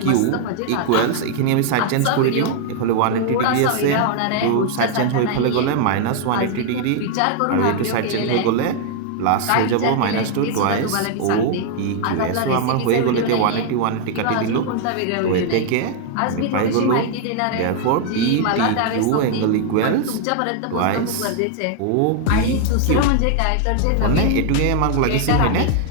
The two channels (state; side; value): different; both; correlation 0.00